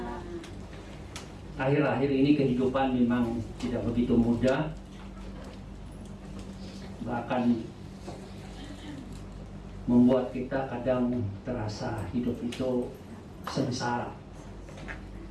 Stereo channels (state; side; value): identical; both; correlation 1.00